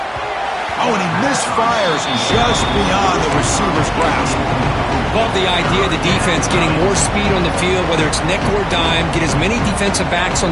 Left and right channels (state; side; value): identical; both; correlation 1.00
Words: Oh, and he misfires just beyond the receiver's grasp. Love the idea of the defense getting more speed on the field, whether it's nickel or dime, get as many defensive backs on